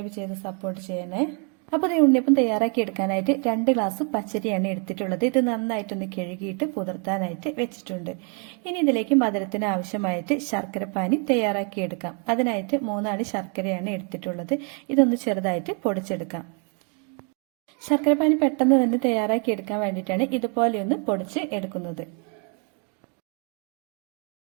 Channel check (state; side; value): quieter; left; 38.1 dB